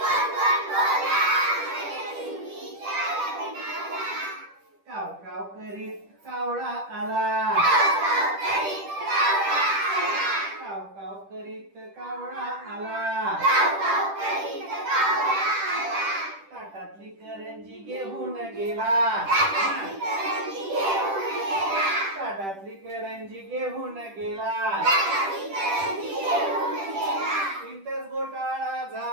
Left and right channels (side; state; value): left; late; 10 ms